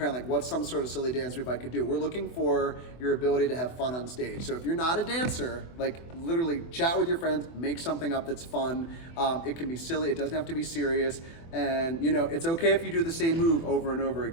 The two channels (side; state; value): right; late; 24 ms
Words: like, what's some sort of silly dance move I could do? We're looking for your ability to have fun on stage. So if you're not a dancer, like literally chat with your friends, make something up that's fun. It can be silly, it doesn't have to be serious. And you know, it's okay if you do the same move over and over